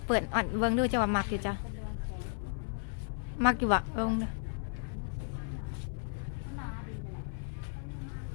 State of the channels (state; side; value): silent; right; 55 dB below the other